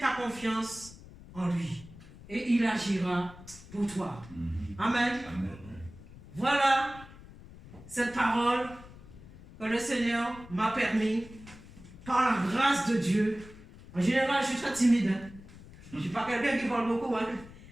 confiance en lui et il agira pour toi. Amen. Amen. Voilà cette parole que le Seigneur m'a permis, par la grâce de Dieu. En général, je suis très timide. Hein? Je ne suis pas quelqu'un qui parle beaucoup. Hein?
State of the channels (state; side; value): noise; left; rumble, 18 dB below the sound